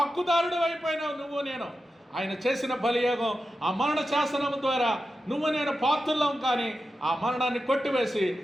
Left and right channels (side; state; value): both; normal; correlation 0.91